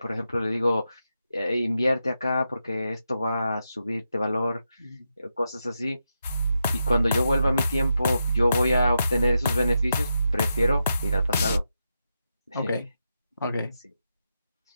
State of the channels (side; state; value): both; inverted; correlation -0.86